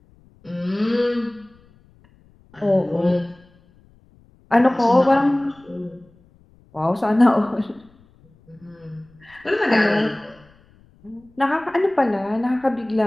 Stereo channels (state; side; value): noise; left; rumble, 30 dB below the sound